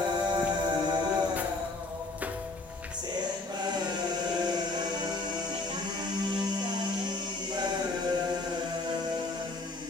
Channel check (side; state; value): right; quieter; 3.2 dB